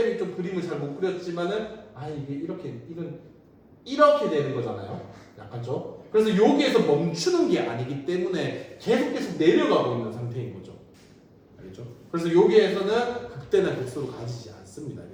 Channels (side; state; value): both; identical; correlation 1.00